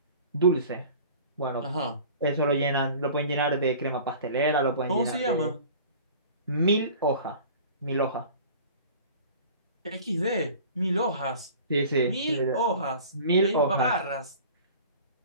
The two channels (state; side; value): inverted; both; correlation -0.43